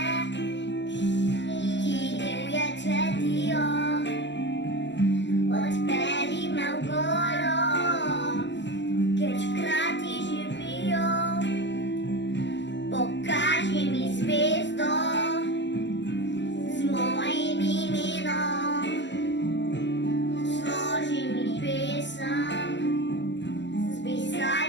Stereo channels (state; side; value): late; right; 0.52 ms